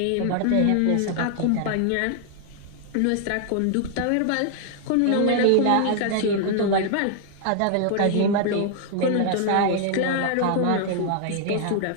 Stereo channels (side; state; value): both; different; correlation 0.00